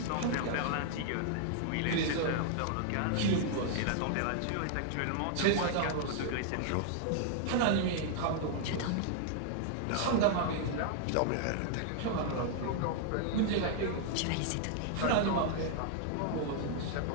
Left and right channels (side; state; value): both; different; correlation 0.00